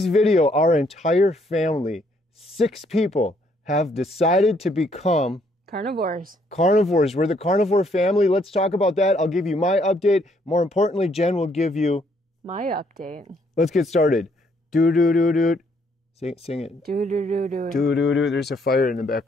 video, our entire family, 6 people, have decided to become carnivores. Carnivores. We're the carnivore family. Let's talk about that. I'll give you my update. More importantly, Jen will give you my update. Let's get started. Do-do-do-do. Sing it. Do-do-do-do. Do-do-do. There's a fire in the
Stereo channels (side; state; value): both; normal; correlation 0.69